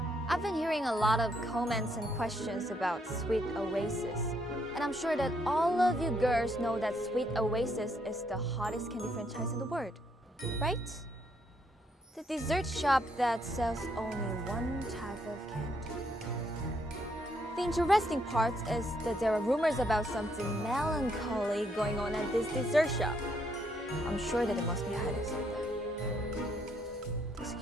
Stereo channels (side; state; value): both; normal; correlation 0.73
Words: I've been hearing a lot of comments and questions about Sweet Oasis. And I'm sure that all of you girls know that Sweet Oasis is the hottest candy franchise in the world, right? The dessert shop that sells only one type of candy. The interesting part is that there are rumors about something melancholy going on at this dessert shop. I'm sure that it must be hiding something. Does